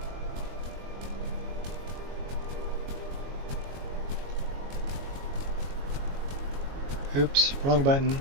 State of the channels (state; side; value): late; left; 22 ms